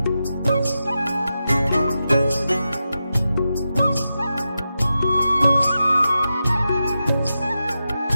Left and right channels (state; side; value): inverted; both; correlation -0.90